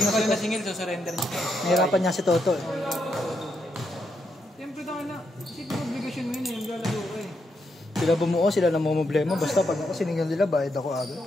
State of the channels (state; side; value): normal; both; correlation 0.80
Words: na si Toto. Singil, so surrender niya. Nahirapan niya si Toto eh. Siyempre tayo na, siyempre obligasyon mo yun eh, yung lalaro ko eh. Sila bumuo, sila namumblema. Basta pag ako siningil nila, bayad ako agad.